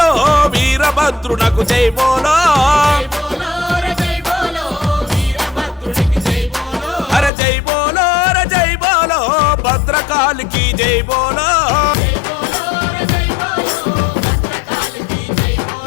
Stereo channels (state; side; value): drops out; right; at 7.3 s